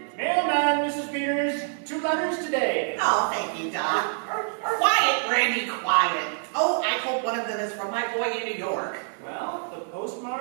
Mailman, Mrs. Peters. 2 letters today. Oh, thank you, Doc. Quiet, Randy, quiet. Oh, I hope one of them is from my boy in New York. Well, the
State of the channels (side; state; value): left; silent; digital silence